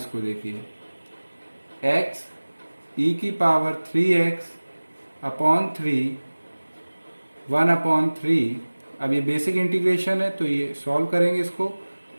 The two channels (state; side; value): inverted; both; correlation -1.00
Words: देखिए, x e की पावर 3x अपॉन 3, 1 अपॉन 3। अब ये बेसिक इंटीग्रेशन है तो ये सॉल्व करेंगे इसको,